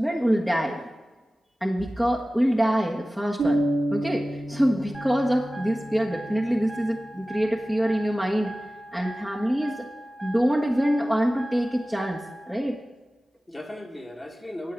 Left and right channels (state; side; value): normal; both; correlation 0.97